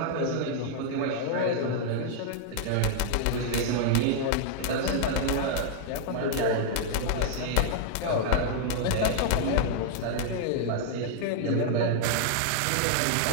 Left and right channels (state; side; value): different; both; correlation -0.01